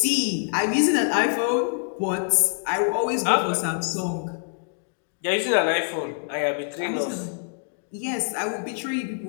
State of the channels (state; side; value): silent; right; 58 dB below the other